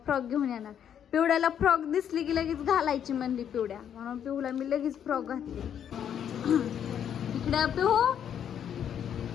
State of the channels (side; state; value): right; quieter; 9.0 dB